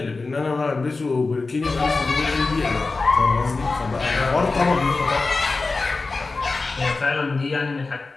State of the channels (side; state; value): right; quieter; 3.8 dB